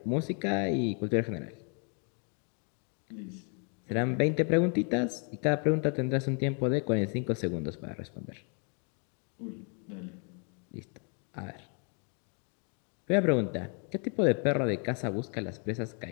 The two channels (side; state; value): right; quieter; 39.1 dB